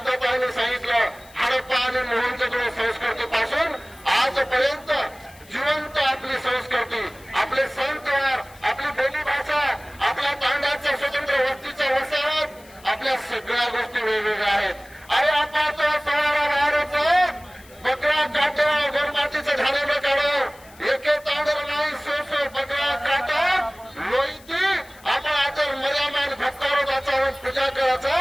सांगितलं, हडप्पा आणि मोहनजोदडो संस्कृतीपासून आजपर्यंत जिवंत आपली संस्कृती, आपले सण त्योहार, आपली बोलीभाषा, आपल्या तांड्याचा स्वतंत्र वस्तीचा वसाहत, आपल्या सगळ्या गोष्टी वेगवेगळ्या आहेत. अरे आपण सवारा बाहेरच बकरा काटा गोरमातीचं झालेलं काढो, एके तांडर नाही सो बकरा काटा लोईती, आपण आता मर्यामान भक्तारो वाचावून पूजा करायचा,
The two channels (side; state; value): left; noise; hiss, 25 dB below the sound